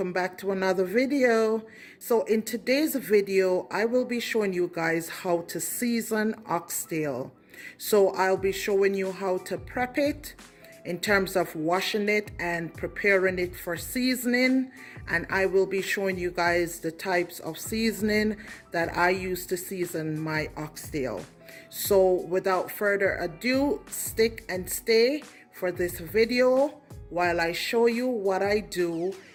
back to another video. So in today's video I will be showing you guys how to season oxtail. So I'll be showing you how to prep it in terms of washing it and preparing it for seasoning, and I will be showing you guys the types of seasoning that I use to season my oxtail. So without further ado, stick and stay for this video while I show you what I do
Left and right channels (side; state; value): both; identical; correlation 1.00